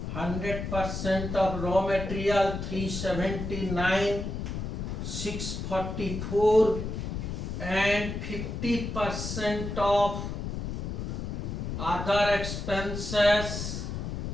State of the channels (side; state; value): left; noise; rumble, 4 dB below the sound